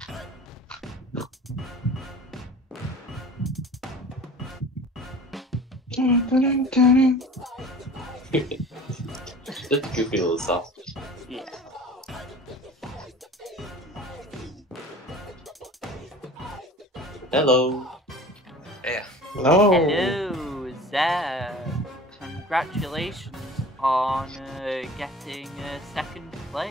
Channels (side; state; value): both; normal; correlation 0.42